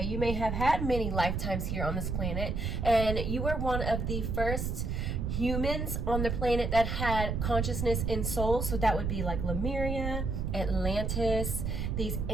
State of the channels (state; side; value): noise; right; rumble, 1 dB below the sound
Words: You may have had many lifetimes here on this planet, and you were one of the first humans on the planet that had consciousness and soul. So that would be like Lemuria, Atlantis, these